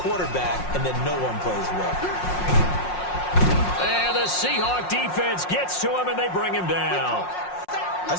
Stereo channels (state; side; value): late; right; 5.6 ms